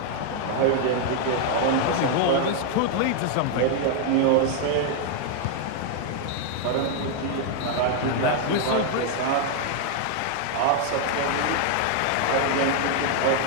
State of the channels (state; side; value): different; both; correlation 0.00